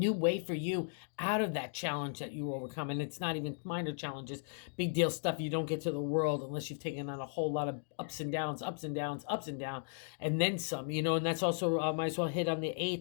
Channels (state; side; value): silent; right; digital silence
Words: way for you out of that challenge that you overcome. And it's not even minor challenges, big deal stuff you don't get to the world unless you've taken on a whole lot of ups and downs, and then some, and that's also, might as well hit on the